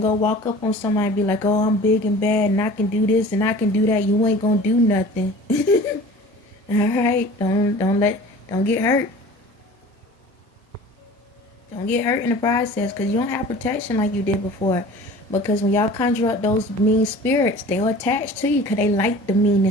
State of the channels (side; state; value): both; normal; correlation 0.42